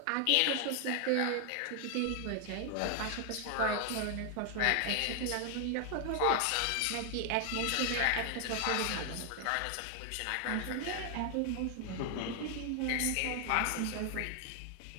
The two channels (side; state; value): both; different; correlation 0.00